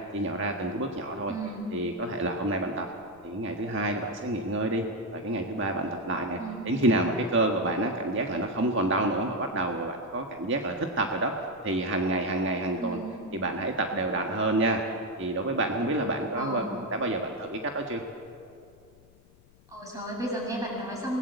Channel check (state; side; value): noise; left; rumble, 27 dB below the sound